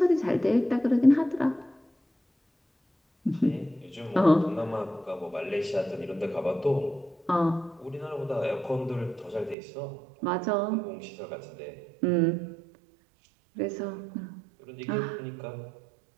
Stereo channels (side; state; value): left; drops out; at 9.6 s